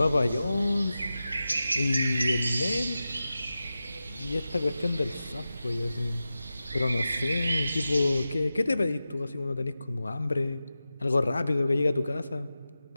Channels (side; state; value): both; inverted; correlation -0.93